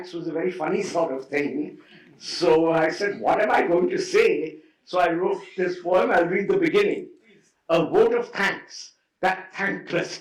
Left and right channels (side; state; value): both; identical; correlation 1.00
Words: was a very funny sort of thing. So I said, what am I going to say? So I wrote this poem. I'll read the beginning. A vote of thanks, that thankless